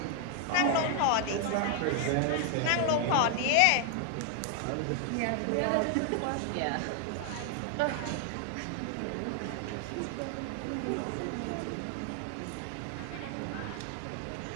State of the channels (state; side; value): different; both; correlation 0.00